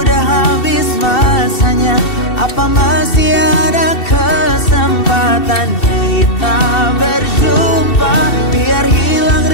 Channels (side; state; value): right; late; 2.7 ms